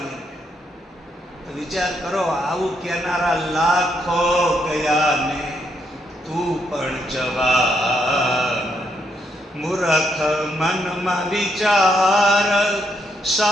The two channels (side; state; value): both; normal; correlation 0.77